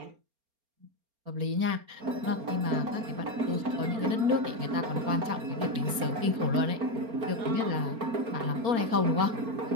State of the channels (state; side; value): late; left; 4.3 ms